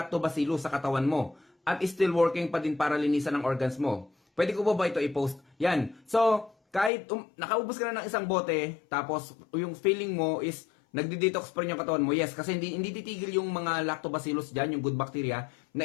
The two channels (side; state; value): right; drops out; at 6.9 s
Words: sa katawan mo. At still working pa din para linisan ang organs mo. Pwede ko ba ito i-post? Yan. So, kahit nakaubos ka na ng isang bote, tapos yung feeling mo is nagdi-detox pa rin yung katawan mo. Yes, kasi hindi titigil yung mga lactobacillus dyan, yung good bacteria,